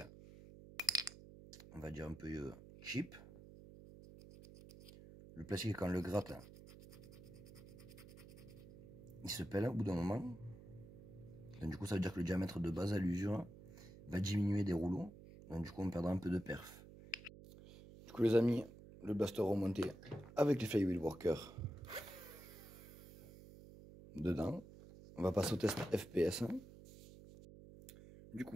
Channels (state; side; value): noise; right; hum, 17 dB below the sound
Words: on va dire un peu cheap. Le plastique, quand on le gratte, il se pèle au bout d'un moment. Donc, du coup, ça veut dire que le diamètre de base à l'usure va diminuer des rouleaux. Donc, du coup, on perdra un peu de perf. Du coup, les amis, le blaster remonté avec les flywheel worker dedans. On va passer au test FPS. Du